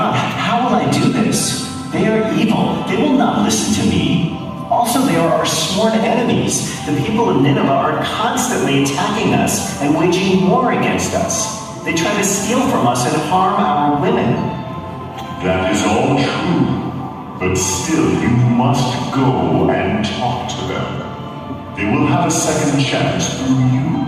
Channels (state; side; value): identical; both; correlation 1.00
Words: how will I do this? They are evil. They will not listen to me. Also, they are our sworn enemies. The people of Nineveh are constantly attacking us and waging war against us. They try to steal from us and harm our women. That is all true. But still, you must go and talk to them. They will have a second chance through you.